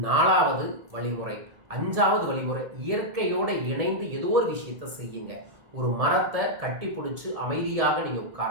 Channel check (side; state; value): left; late; 1.7 ms